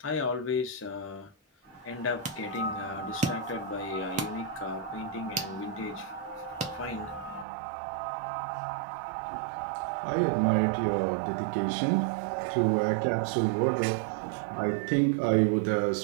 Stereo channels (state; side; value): drops out; left; at 7.5 s